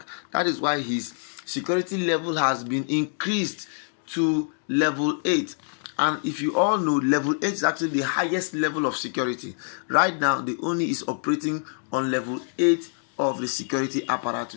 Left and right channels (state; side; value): silent; right; digital silence